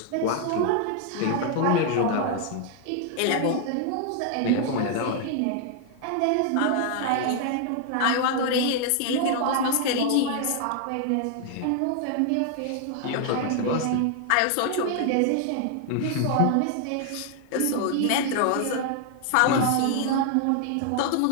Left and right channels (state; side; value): different; both; correlation 0.00